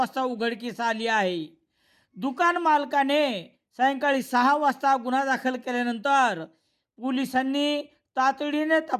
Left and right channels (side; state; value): both; identical; correlation 1.00